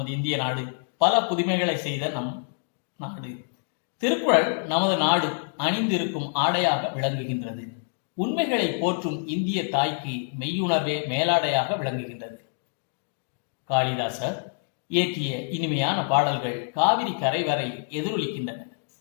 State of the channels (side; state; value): right; silent; digital silence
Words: இந்திய நாடு பல புதுமைகளை செய்த நம் நாடு. திருக்குறள் நமது நாடு அணிந்திருக்கும் ஆடையாக விளங்குகின்றது. உண்மைகளை போற்றும் இந்திய தாய்க்கு மெய்யுணர்வே மேலாடையாக விளங்குகின்றது. காளிதாசர் இயற்றிய இனிமையான பாடல்கள் காவிரி கரை வரை எதிரொலிக்கின்றன.